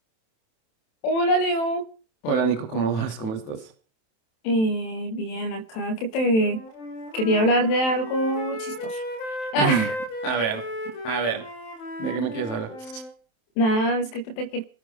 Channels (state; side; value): late; right; 27 ms